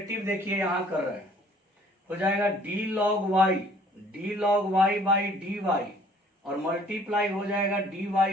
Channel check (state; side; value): normal; both; correlation 0.56